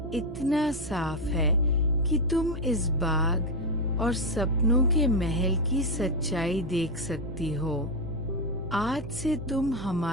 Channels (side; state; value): right; noise; hum, 13 dB below the sound